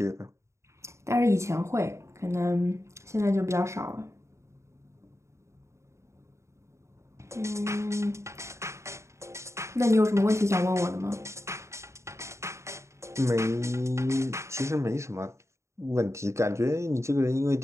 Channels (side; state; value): left; late; 0.14 ms